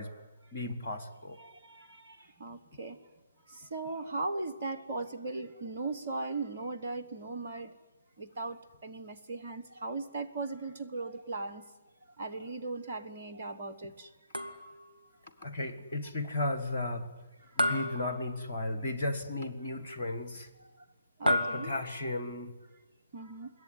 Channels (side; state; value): both; inverted; correlation -0.72